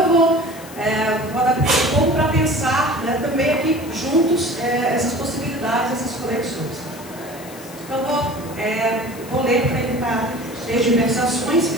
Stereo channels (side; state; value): left; noise; hiss, 18 dB below the sound